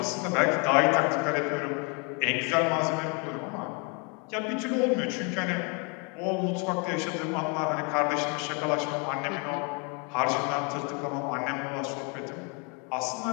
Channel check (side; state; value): right; quieter; 34.0 dB